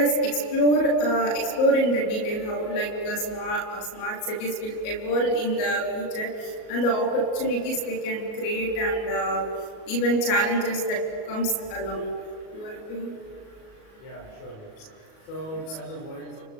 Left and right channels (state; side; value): late; right; 37 ms